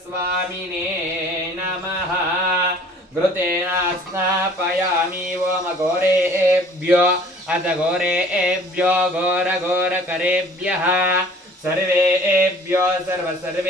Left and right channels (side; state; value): both; normal; correlation 0.51